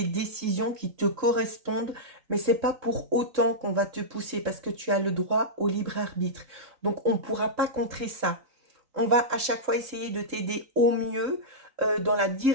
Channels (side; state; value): left; late; 3.9 ms